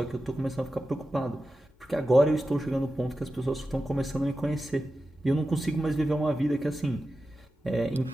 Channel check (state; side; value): normal; both; correlation 0.92